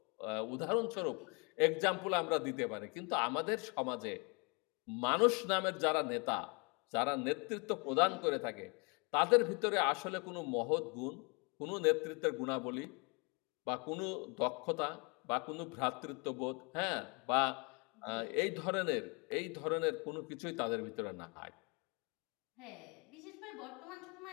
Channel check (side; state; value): right; quieter; 32.0 dB